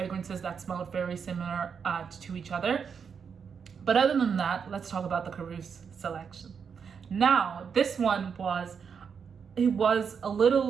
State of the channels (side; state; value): left; quieter; 6.5 dB